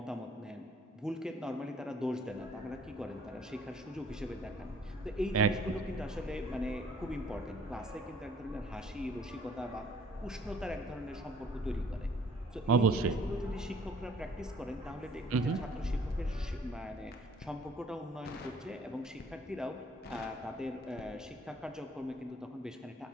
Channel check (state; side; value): normal; both; correlation 0.57